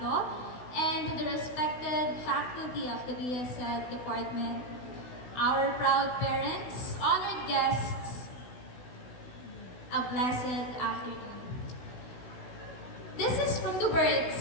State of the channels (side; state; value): right; late; 16 ms